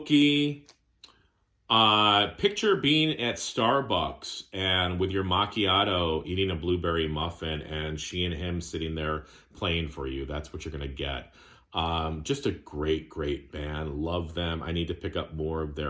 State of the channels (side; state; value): both; identical; correlation 1.00